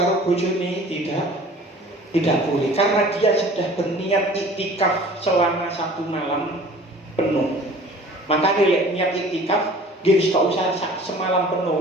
bojone tidak boleh, karena dia sudah berniat iktikaf selama 1 malam penuh. Makanya lek niat iktikaf, dia wis gak usah semalam penuh,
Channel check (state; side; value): normal; both; correlation 0.47